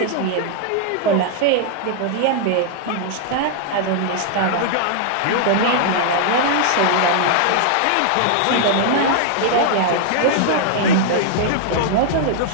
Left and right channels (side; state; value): both; different; correlation -0.01